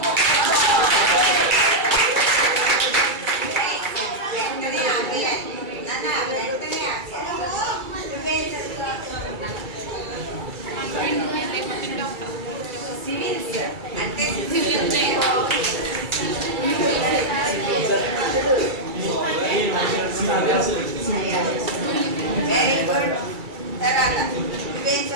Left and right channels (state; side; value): late; left; 2.3 ms